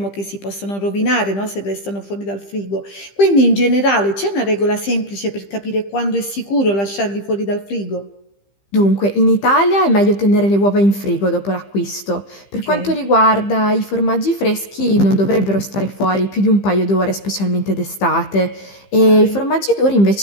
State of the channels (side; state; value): right; late; 15 ms